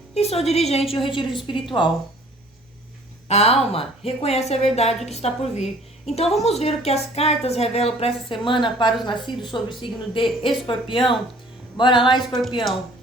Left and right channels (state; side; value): normal; both; correlation 0.53